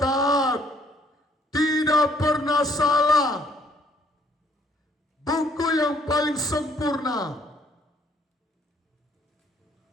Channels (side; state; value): both; normal; correlation 0.65